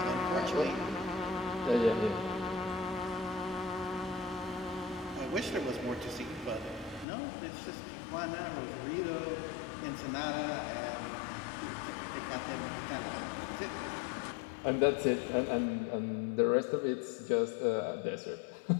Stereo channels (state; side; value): drops out; right; at 7.1 s